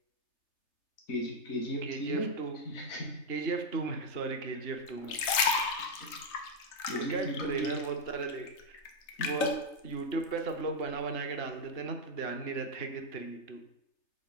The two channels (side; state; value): right; late; 3.3 ms